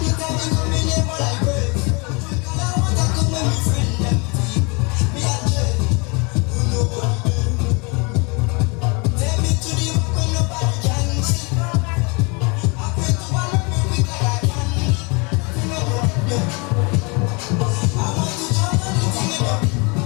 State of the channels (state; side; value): quieter; right; 30.5 dB